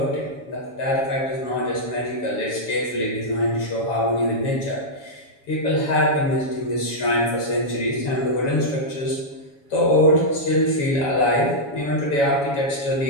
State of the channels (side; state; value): right; late; 7.2 ms